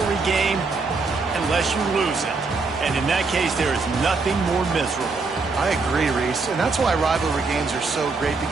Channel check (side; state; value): left; quieter; 4.1 dB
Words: game unless you lose it. And in that case, there is nothing more miserable. I agree, Reese. And that's why rivalry games are so great,